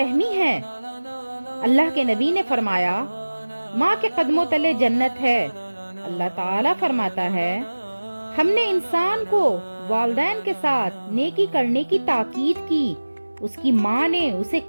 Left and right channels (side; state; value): both; inverted; correlation -1.00